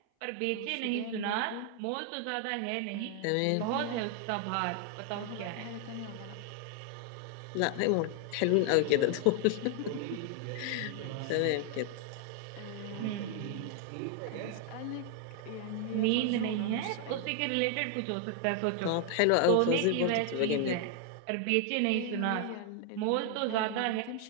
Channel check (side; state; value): both; different; correlation 0.00